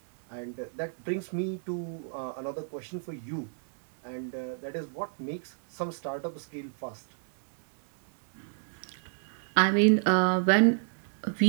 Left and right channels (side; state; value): left; silent; 57 dB below the other